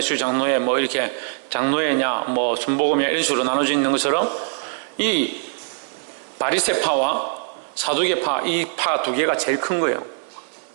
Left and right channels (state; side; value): silent; left; digital silence